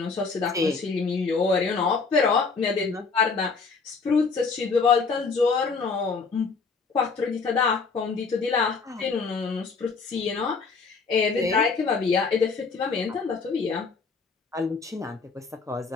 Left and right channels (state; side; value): quieter; right; 4.7 dB